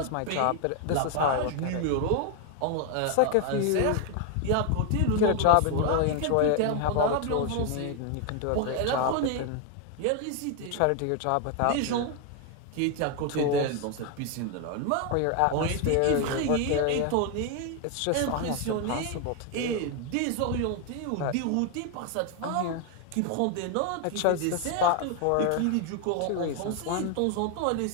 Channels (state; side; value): different; both; correlation 0.01